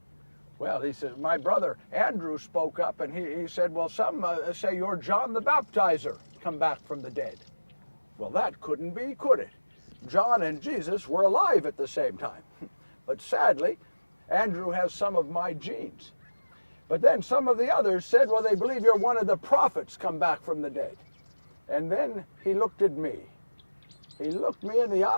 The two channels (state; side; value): inverted; both; correlation -1.00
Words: Well, he said, my brother Andrew spoke up, and he said, well, some say you're John the Baptizer, come back from the dead. Well, that couldn't be, could it? John and Jesus were alive at the same time. But sadly, Andrew has some of my genes. But then some of the others said, well, they believe you're one of the prophets come back from the dead. And then he looked at me. He looked me in the